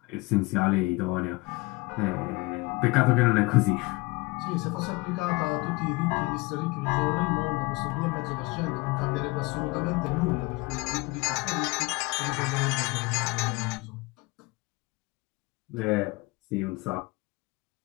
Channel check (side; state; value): right; quieter; 23.9 dB